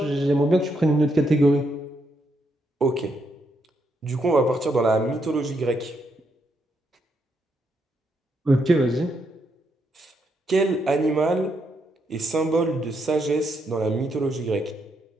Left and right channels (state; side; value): normal; both; correlation 0.78